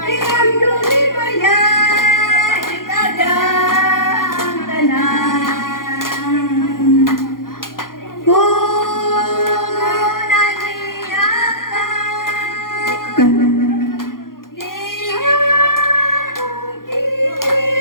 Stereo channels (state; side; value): late; right; 0.91 ms